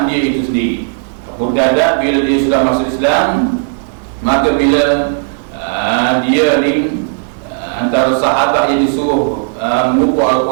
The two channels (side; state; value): left; silent; digital silence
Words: dia itu sendiri. Abu Darda bila dia sudah masuk Islam, maka bila dia ni antara sahabat yang disuruh mengumpul